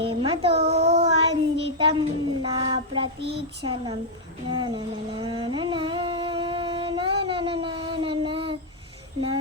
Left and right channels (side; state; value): both; normal; correlation -0.02